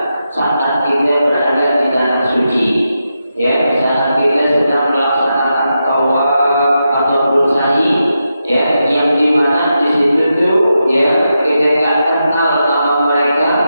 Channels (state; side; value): inverted; both; correlation -0.87